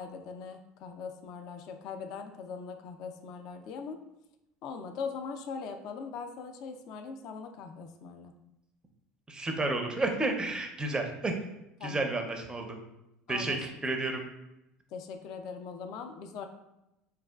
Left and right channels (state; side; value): normal; both; correlation 0.57